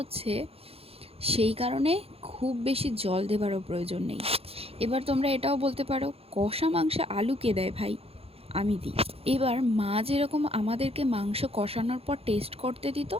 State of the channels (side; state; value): left; late; 0.28 ms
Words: সেই কারণে খুব বেশি জল দেবারও প্রয়োজন নেই। এবার তোমরা এটাও বলতে পারো, কষা মাংসে আলু কে দেয় ভাই? আমি দিই। এবার মা যেরকম আমাদেরকে মাংস কষানোর পর টেস্ট করতে দিত,